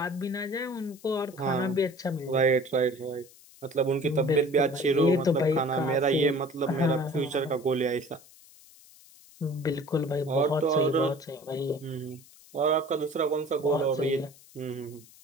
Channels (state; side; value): noise; left; hiss, 24 dB below the sound